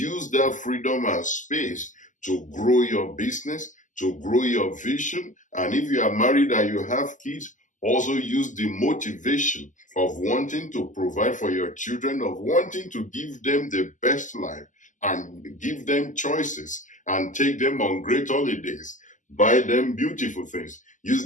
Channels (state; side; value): late; right; 0.37 ms